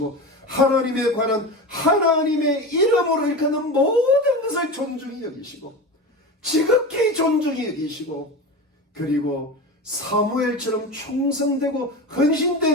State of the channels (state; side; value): normal; both; correlation 0.26